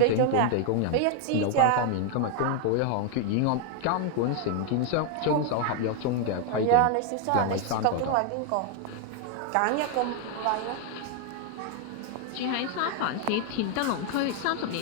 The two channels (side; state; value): both; different; correlation 0.01